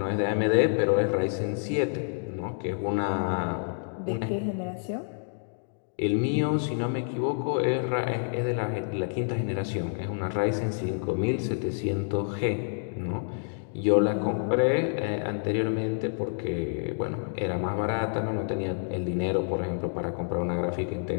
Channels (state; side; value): silent; right; digital silence